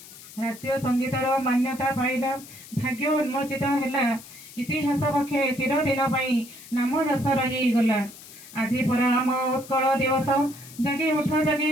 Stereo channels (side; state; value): left; noise; hiss, 18 dB below the sound